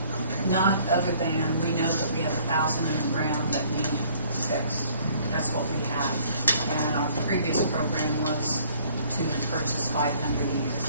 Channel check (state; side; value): inverted; both; correlation -0.59